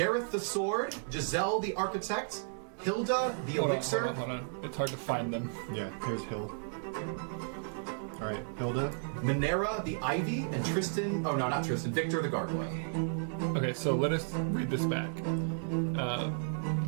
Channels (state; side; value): silent; left; 56 dB below the other